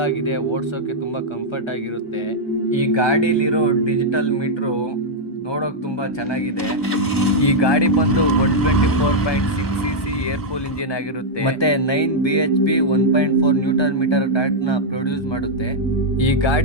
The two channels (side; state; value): right; late; 1.2 ms